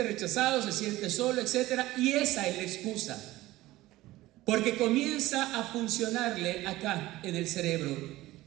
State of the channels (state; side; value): quieter; left; 17.4 dB